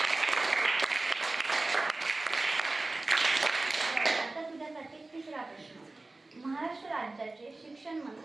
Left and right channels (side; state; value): left; quieter; 3.1 dB